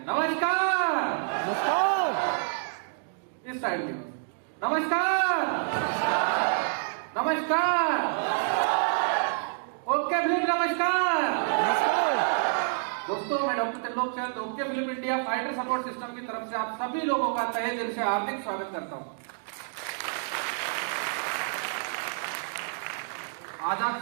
नमस्कार। नमस्कार। इस साइड में नमस्कार। नमस्कार। ओके फिल्म नमस्कार। नमस्कार। दोस्तों, मैं doctor Trilok Chand okay film India fighter support system की तरफ से आप सभी लोगों का तहे दिल से हार्दिक स्वागत करता हूं। आज आप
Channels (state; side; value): silent; left; digital silence